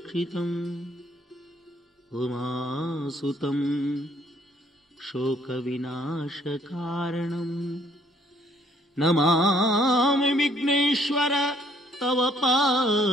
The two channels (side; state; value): both; normal; correlation 0.64